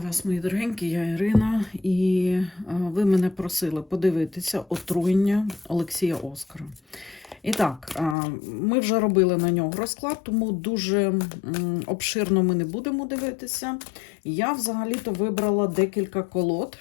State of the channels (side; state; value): right; drops out; at 8.2 s